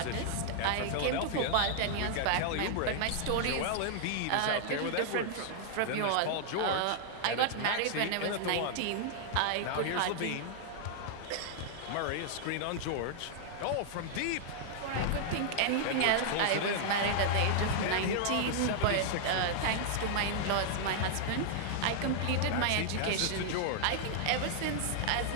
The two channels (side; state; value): both; different; correlation -0.01